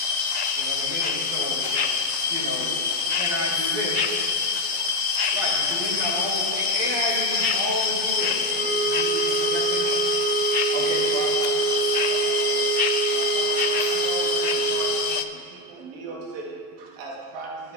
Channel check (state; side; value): late; left; 11 ms